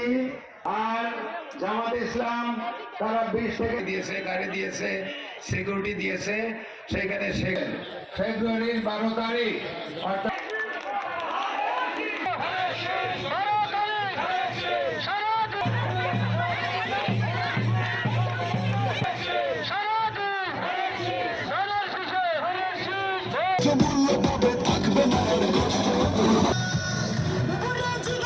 আর জামাত ইসলাম তারা 20 থেকে দিয়েছে, গাড়ি দিয়েছে, সিকিউরিটি দিয়েছে। সেখানে ফেব্রুয়ারির 12 তারিখ অর্থাৎ মূল্য পাবে, থাকবে না আর কষ্ট।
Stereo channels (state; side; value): identical; both; correlation 1.00